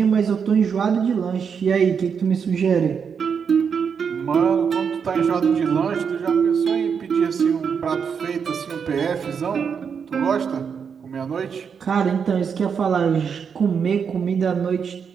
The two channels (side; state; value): left; quieter; 6.6 dB